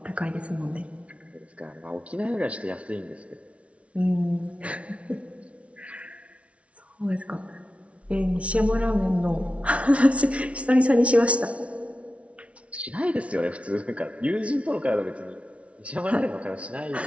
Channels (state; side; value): late; left; 0.063 ms